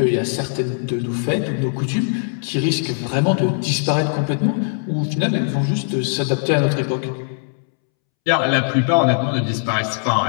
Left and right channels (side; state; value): right; silent; 66 dB below the other